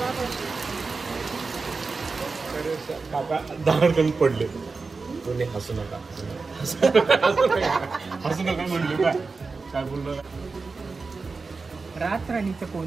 पडले कोणी हसू नका म्हणले काय बोललो. रातराणीचं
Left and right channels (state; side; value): quieter; left; 4.2 dB